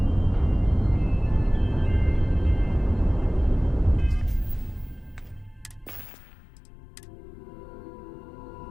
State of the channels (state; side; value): drops out; right; at 6.1 s